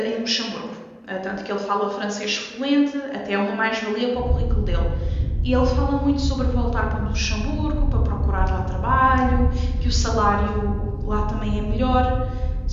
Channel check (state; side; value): identical; both; correlation 1.00